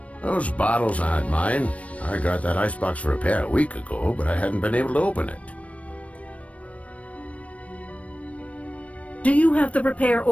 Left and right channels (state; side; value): late; right; 0.065 ms